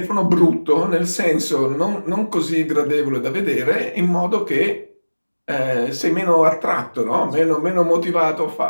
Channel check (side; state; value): both; inverted; correlation -1.00